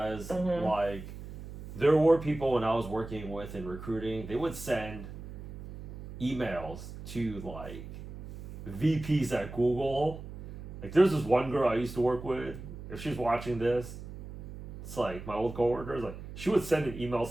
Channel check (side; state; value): right; noise; hum, 12 dB below the sound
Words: like there were people when I was working with in recruiting, they would send emails to like VPs at Google. Like there's this one girl I used to work with. If she's watching this, it's like my old coworker. Like she would send an email